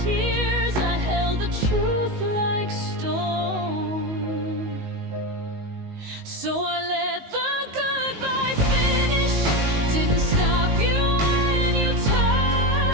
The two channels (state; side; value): late; left; 19 ms